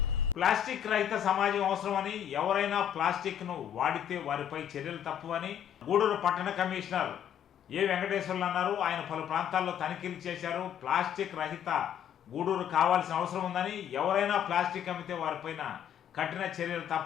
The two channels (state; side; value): quieter; right; 9.5 dB